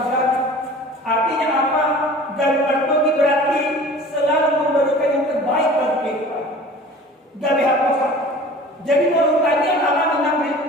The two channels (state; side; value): normal; both; correlation 0.43